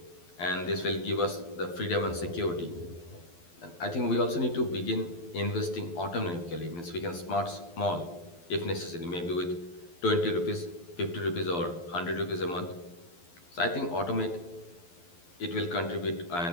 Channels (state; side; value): late; right; 12 ms